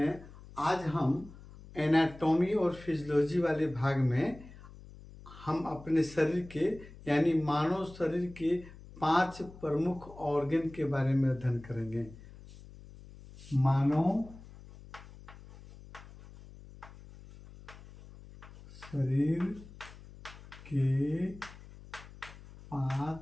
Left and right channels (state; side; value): noise; left; hum, 18 dB below the sound